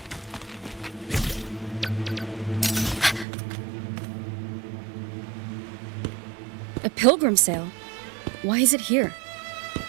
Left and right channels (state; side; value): drops out; left; at 3.2 s